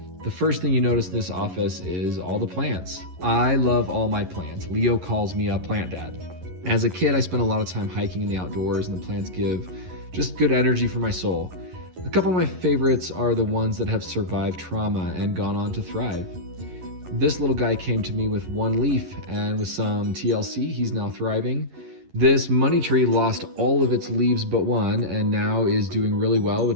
The first thing you notice in this office is all the plants. I love all my plants. Leo calls me a plant dad. As a kid, I spent a lot of time hiking in the outdoors, and the plants give just good energy for my soul. A couple of my favorites are the ones that have survived trauma and gone on to thrive. This little guy came to me with one leaf, and with some TLC, he's now thriving. This money tree lost all of its leaves but one, and now is doing really well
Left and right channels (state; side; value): late; left; 11 ms